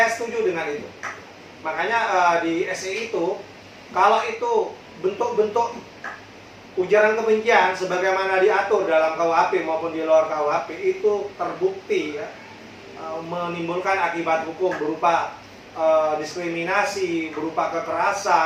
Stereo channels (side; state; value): both; identical; correlation 1.00